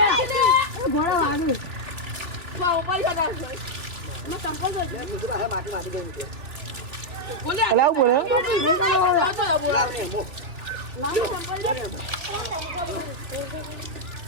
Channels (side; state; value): left; late; 3.1 ms